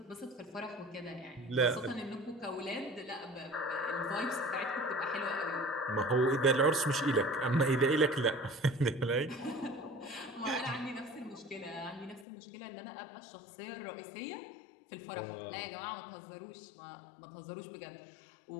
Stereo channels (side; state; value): right; drops out; at 12.2 s